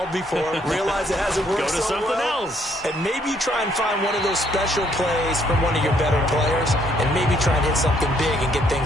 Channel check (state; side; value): normal; both; correlation 0.68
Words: before, realize it hasn't worked Go to so something well, else. and maybe try and find one of those special plays from one of your better players, and maybe try and hit something big and get